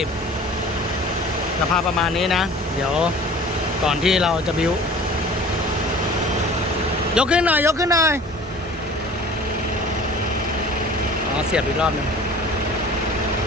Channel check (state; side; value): normal; both; correlation 0.44